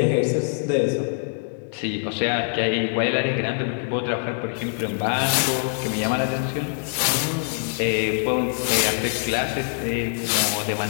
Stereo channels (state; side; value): silent; right; digital silence